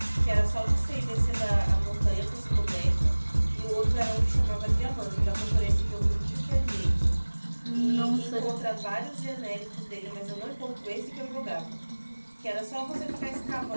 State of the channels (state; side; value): inverted; both; correlation -1.00